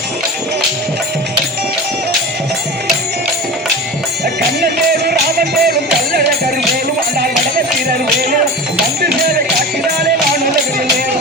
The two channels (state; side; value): normal; both; correlation 0.30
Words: கண்ணன் மேலும் ராமன் மேலும் கல்லற கரு மேலும் ஆனால் வடமத்திரர் மேலும் வந்து சேவை காட்டினாலே நான் உலகில்